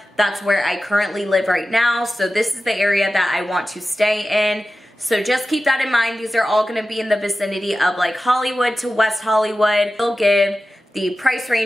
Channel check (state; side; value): normal; both; correlation 0.94